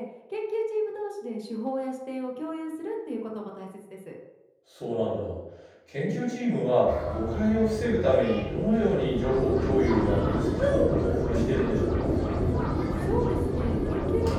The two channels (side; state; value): both; identical; correlation 1.00